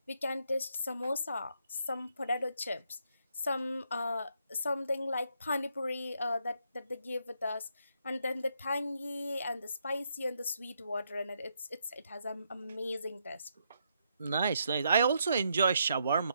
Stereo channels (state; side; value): inverted; both; correlation -0.77